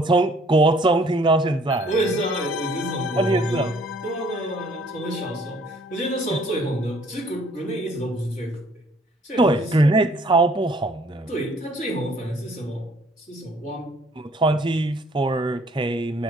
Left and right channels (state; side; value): normal; both; correlation 0.60